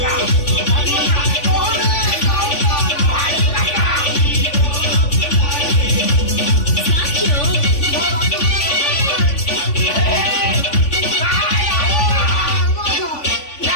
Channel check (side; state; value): right; late; 3.5 ms